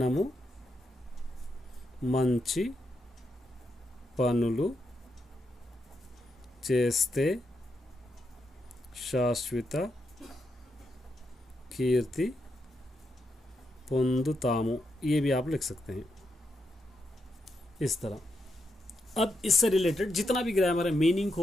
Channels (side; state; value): both; normal; correlation 0.83